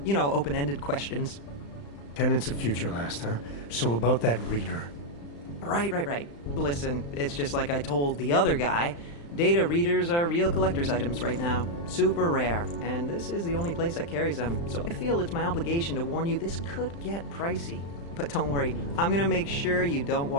You know, open-ended questions. Tenants of Future Last, huh? So about that reader. Right. Listen, it's just like I told the other guy. Data readers are real collector's items right now. Super rare. And this is the only place that carries them. So I feel it's my obligation to warn you this could get pricey. But don't worry, I'm gonna make sure you don't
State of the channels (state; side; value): late; right; 35 ms